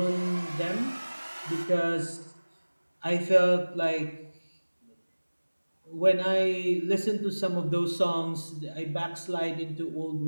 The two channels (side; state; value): both; inverted; correlation -1.00